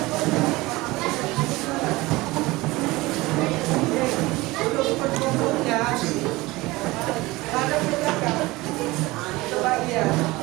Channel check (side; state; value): left; quieter; 20.8 dB